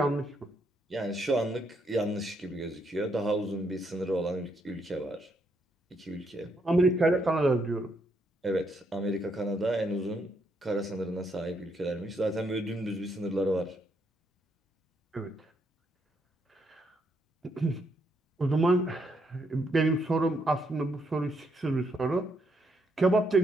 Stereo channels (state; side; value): normal; both; correlation 0.75